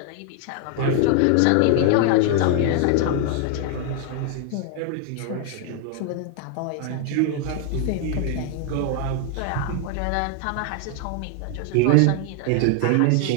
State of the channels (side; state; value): both; different; correlation 0.00